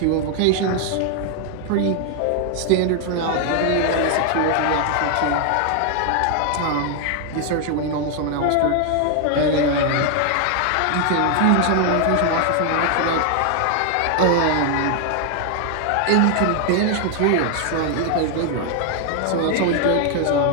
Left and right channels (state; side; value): different; both; correlation 0.00